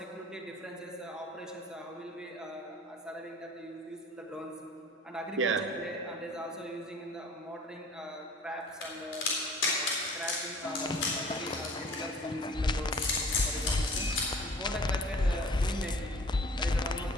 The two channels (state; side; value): normal; both; correlation 0.47